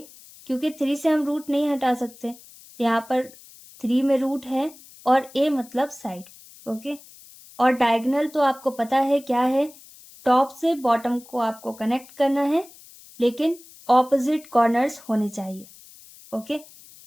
क्योंकि 3 से हम रूट नहीं हटा सकते, यहाँ पर 3 में रूट है और a मतलब साइड। ओके, और डायगोनल तो आपको पता है क्या है, टॉप से बॉटम को आपको कनेक्ट करना है, लेकिन ऑपोजिट कॉर्नर्स होने चाहिए। ओके,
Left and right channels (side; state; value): left; noise; hiss, 22 dB below the sound